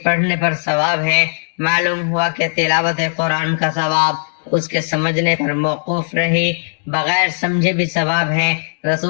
پڑھنے پر ثواب ہے۔ معلوم ہوا کہ تلاوت قرآن کا ثواب اس کے سمجھنے پر موقوف رہی، بغیر سمجھے بھی ثواب ہے۔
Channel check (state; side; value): silent; right; digital silence